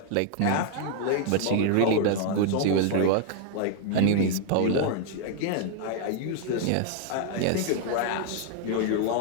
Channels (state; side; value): different; both; correlation 0.00